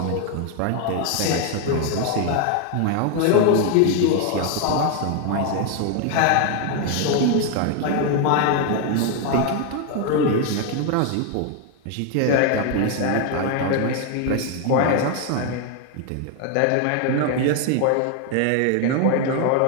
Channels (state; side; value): different; both; correlation 0.01